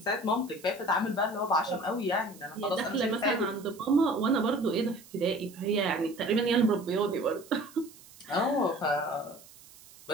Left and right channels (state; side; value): noise; right; hiss, 22 dB below the sound